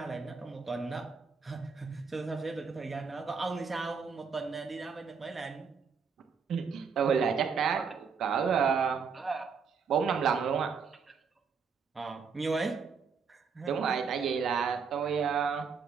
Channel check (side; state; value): left; quieter; 5.8 dB